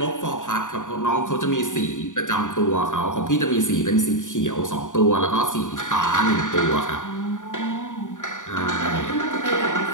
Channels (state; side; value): late; right; 0.86 ms